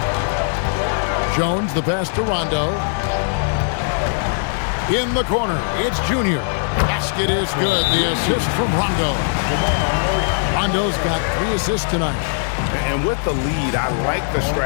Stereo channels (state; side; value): silent; right; 66 dB below the other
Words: Jones, the pass to Rondo. In the corner, it's Junior. Basket is good. The assist from Rondo. Rondo's got 3 assists tonight. And with the lead, I like the